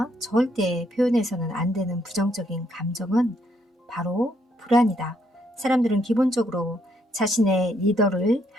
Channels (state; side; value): normal; both; correlation 0.73